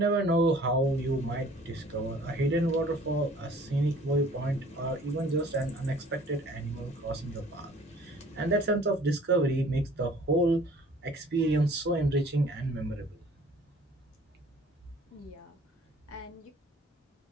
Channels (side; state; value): both; normal; correlation 0.52